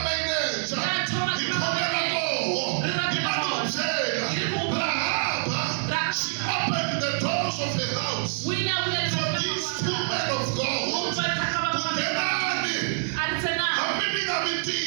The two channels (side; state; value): left; silent; digital silence